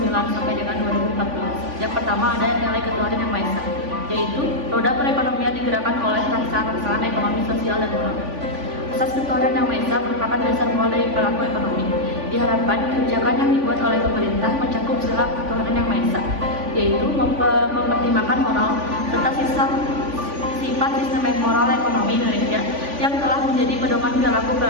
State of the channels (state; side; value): late; left; 3.5 ms